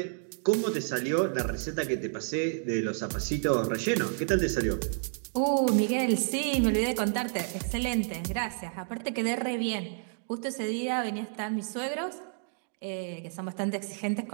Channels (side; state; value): left; silent; digital silence